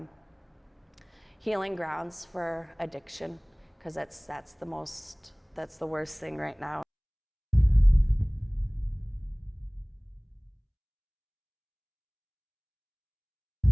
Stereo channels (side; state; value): both; identical; correlation 1.00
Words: healing grounds for addiction, because that's the worst thing right now.